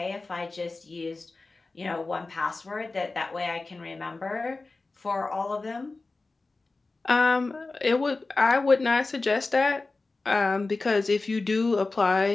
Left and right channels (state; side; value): quieter; right; 3.5 dB